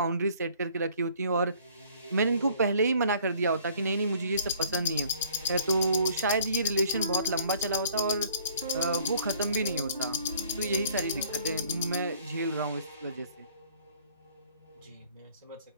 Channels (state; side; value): inverted; both; correlation -0.57